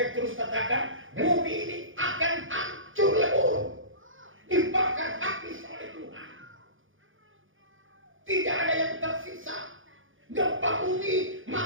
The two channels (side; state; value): left; late; 0.58 ms